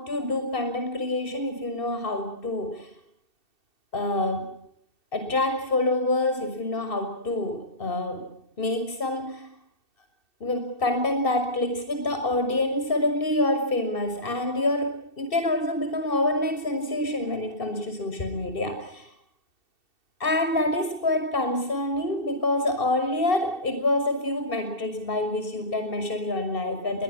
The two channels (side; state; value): right; late; 2.7 ms